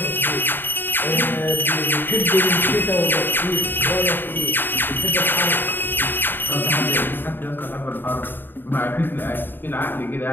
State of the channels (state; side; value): late; right; 0.095 ms